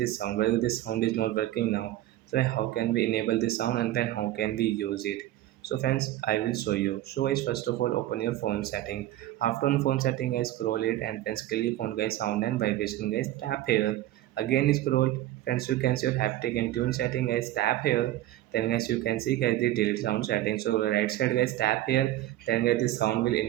sound. Well, this sound is not working now. So how can we enable this sound and then how can we use it? So friends, I will show you. So guys, first of all, open your phone setting. After on phone setting, guys, scroll it and then click on guys sound and vibration. Guys, tap here. Again scroll. Friends, you can see your haptic and tune setting. Guys, tap here. Then guys, you can see guys the delete sound setting. So right side guys, tap here. Then guys, this sound will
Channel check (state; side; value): quieter; left; 14.6 dB